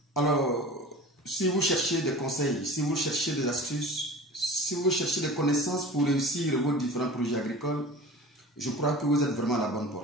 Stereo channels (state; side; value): normal; both; correlation 0.38